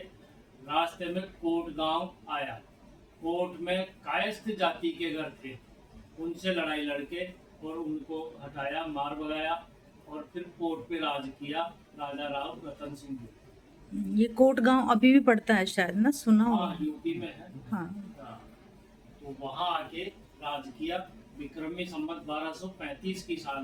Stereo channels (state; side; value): identical; both; correlation 1.00